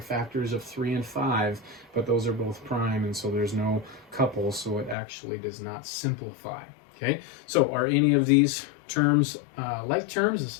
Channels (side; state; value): right; drops out; at 5.0 s